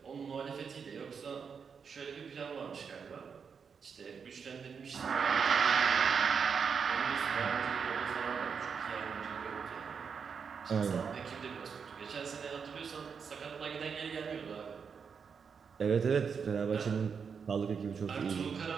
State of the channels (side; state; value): left; quieter; 6.2 dB